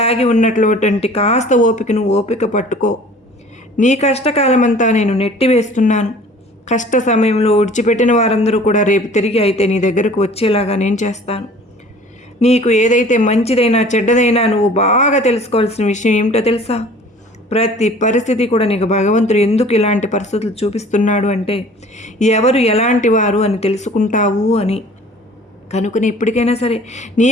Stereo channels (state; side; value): normal; both; correlation 0.48